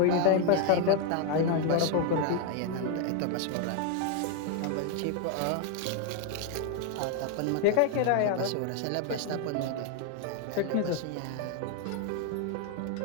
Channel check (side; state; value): both; different; correlation 0.00